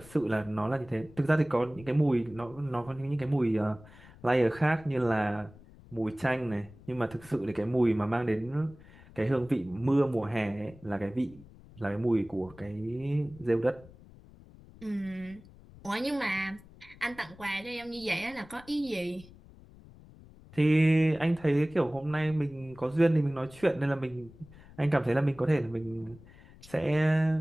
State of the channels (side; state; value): left; noise; rumble, 22 dB below the sound